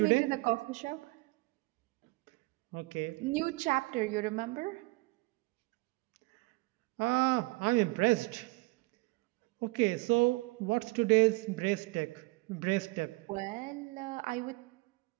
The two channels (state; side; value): quieter; left; 24.3 dB